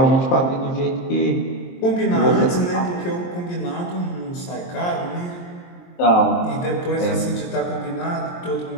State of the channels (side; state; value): right; late; 23 ms